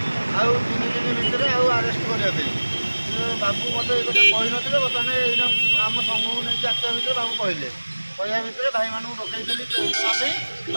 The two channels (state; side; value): inverted; both; correlation -1.00